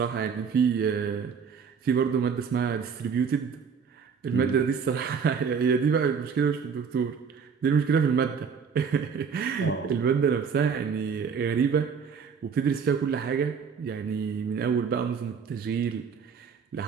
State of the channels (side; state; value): left; quieter; 6.2 dB